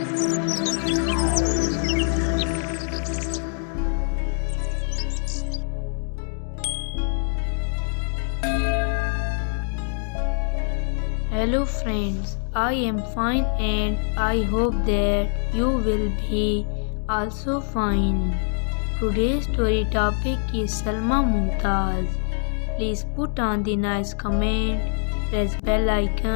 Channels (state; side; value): silent; right; 63 dB below the other